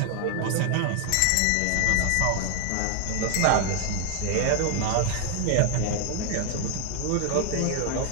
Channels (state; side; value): different; both; correlation 0.01